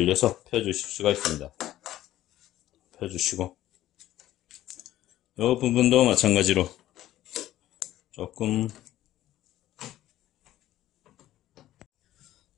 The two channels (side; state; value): right; quieter; 14.0 dB